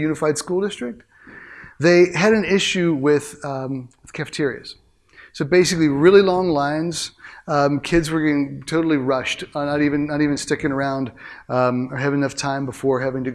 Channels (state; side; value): identical; both; correlation 1.00